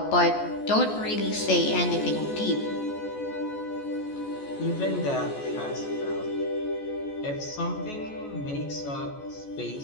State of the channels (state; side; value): late; right; 14 ms